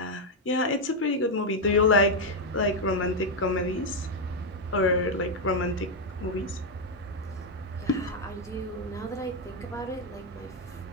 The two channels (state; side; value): normal; both; correlation 0.02